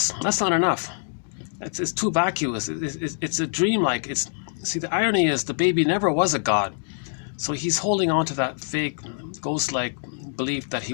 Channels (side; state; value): right; silent; digital silence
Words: that's not enough. It's too vacuous. It's a dream-like. See, the irony is the baby never was a god, so he's holding on to that fake, ghost-like belief that he